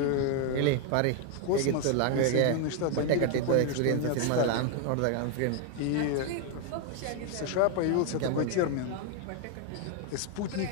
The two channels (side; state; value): both; different; correlation 0.01